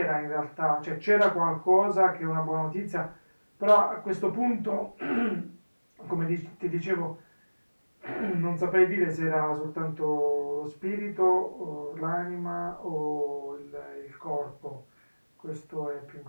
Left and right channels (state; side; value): inverted; both; correlation -1.00